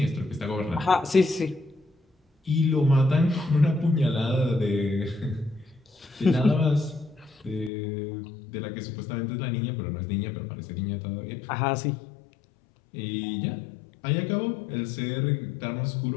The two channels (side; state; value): right; drops out; at 7.7 s